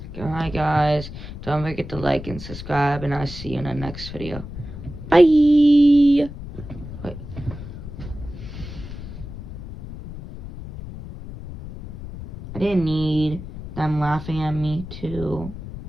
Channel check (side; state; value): left; noise; rumble, 11 dB below the sound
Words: Alright guys, don't forget to like and subscribe, and I'll see you in the next video. Bye! Wait. I didn't need them laughing at me too.